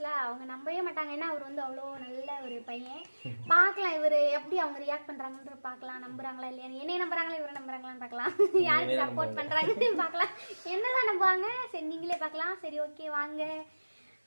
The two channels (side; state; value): both; inverted; correlation -1.00